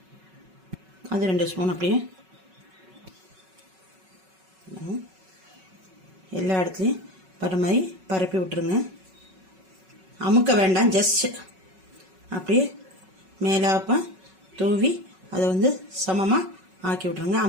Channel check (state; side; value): late; left; 5.3 ms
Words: அது 2 ஸ்பூன் அப்படியே எல்லா இடத்துலையும் பர மாதிரி பரப்பி விட்டுருங்க. அமுக்க வேண்டாம், ஜஸ்ட் அப்படியே மேலாப்ப தூவி அதை வந்து சமமாக ஆக்கி விட்ருங்க.